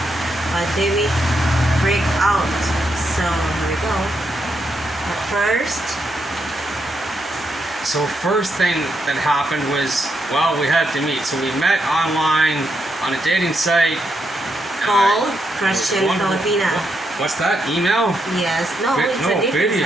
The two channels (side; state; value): both; normal; correlation 0.80